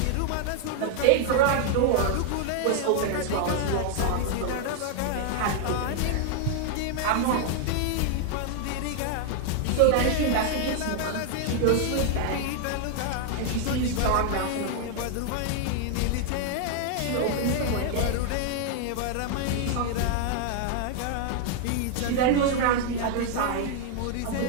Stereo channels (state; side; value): different; both; correlation 0.00